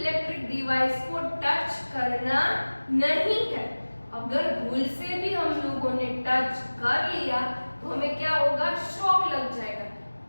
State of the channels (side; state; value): both; inverted; correlation -1.00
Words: डिवाइस को टच करना नहीं है। अगर भूल से भी हम लोगों ने टच कर लिया तो हमें क्या होगा, शॉक लग जाएगा।